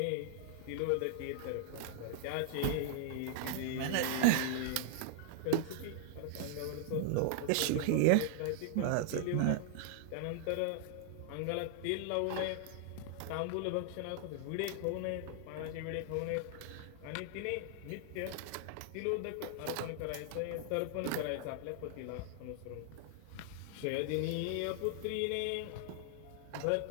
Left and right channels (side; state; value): both; different; correlation -0.01